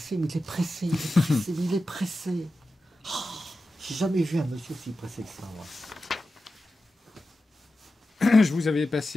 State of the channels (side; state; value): both; normal; correlation 0.92